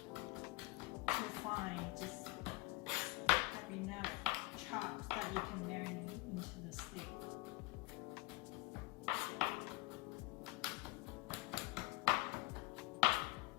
fine. Just have enough chops that you can marinate into the steak.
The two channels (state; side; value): quieter; right; 23.7 dB